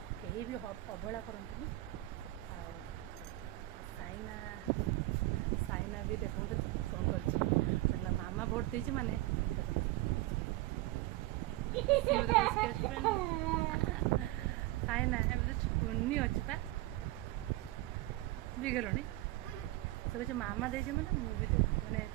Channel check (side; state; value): left; quieter; 18.0 dB